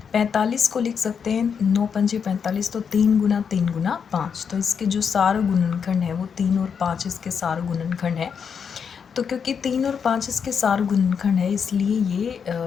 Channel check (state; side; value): quieter; right; 6.8 dB